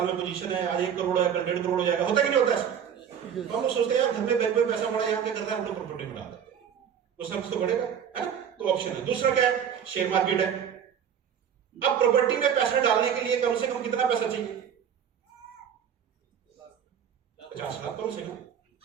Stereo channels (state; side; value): quieter; left; 8.3 dB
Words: में पोजीशन है, आज 1 करोड़ है, कल 1.5 करोड़ हो जाएगा। होता है कि नहीं होता है? तो हम लोग सोचते हैं यार घर में बैंक में पैसा पड़ा है, यहाँ क्या कर रहा है, हम लोग प्रॉपर्टी में डाल देते हैं, कुछ ना कुछ तो बढ़ेगा, है ना? तो ऑप्शन है। दूसरा क्या है? शेयर मार्केट है। अब प्रॉपर्टी में पैसा डालने के लिए कम से कम कितना पैसा चाहिए? 50 लाख कम से कम,